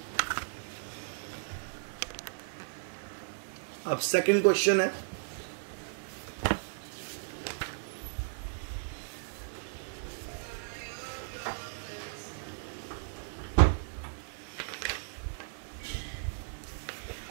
अब सेकंड क्वेश्चन है,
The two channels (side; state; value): left; silent; 54 dB below the other